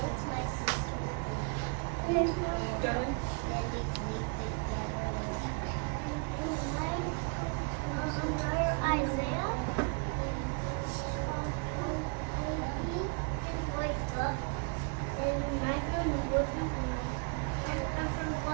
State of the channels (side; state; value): left; quieter; 34.3 dB